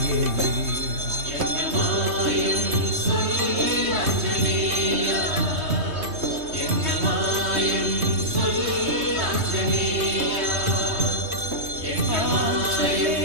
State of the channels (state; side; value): late; left; 3.2 ms